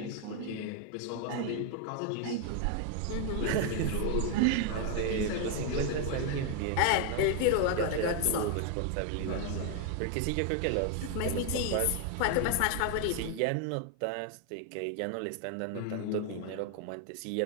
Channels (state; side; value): different; both; correlation 0.01